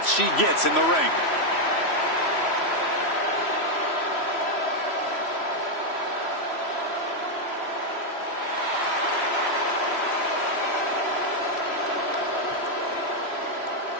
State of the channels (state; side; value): late; right; 3.1 ms